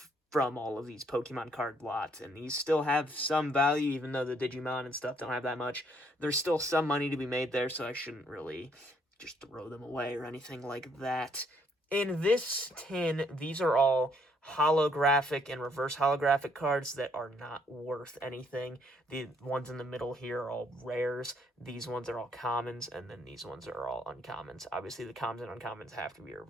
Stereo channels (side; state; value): both; normal; correlation 0.68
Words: from all of these Pokemon card lots, and these still have some value, even though the Digimon and stuff don't have that much. There's still some money to be made there, so I shouldn't really just throw them away or anything like that. In this tin, these are all holographic and reverse holographic cards that are not worth anything. The ones in the middle here are all rares. These ones are all commons, and then these ones are all uncommons. Obviously, the commons and uncommons have to be